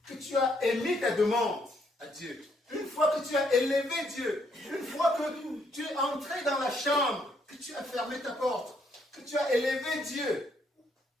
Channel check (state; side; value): normal; both; correlation 0.71